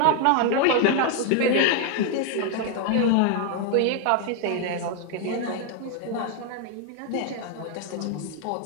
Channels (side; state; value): both; different; correlation 0.00